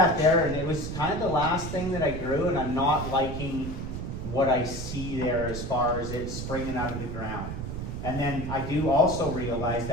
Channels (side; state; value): right; noise; rumble, 6 dB below the sound